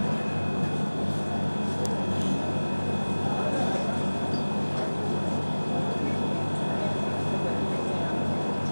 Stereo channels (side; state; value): both; inverted; correlation -1.00